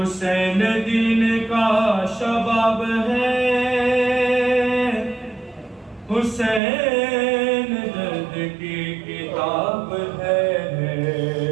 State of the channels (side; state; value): left; drops out; at 6.6 s